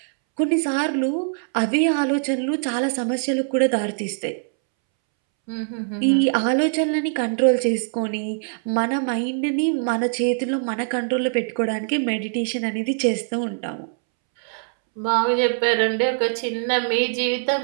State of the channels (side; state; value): left; silent; 64 dB below the other